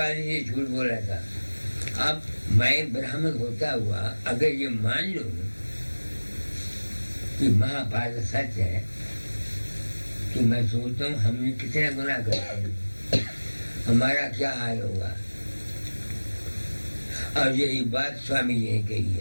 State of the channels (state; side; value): inverted; both; correlation -1.00